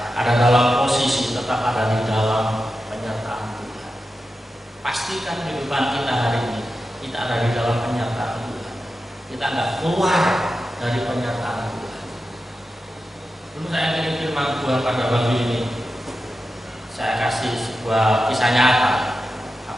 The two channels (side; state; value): both; normal; correlation 0.91